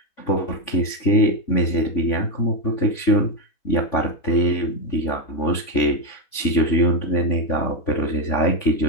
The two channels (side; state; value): right; late; 3.5 ms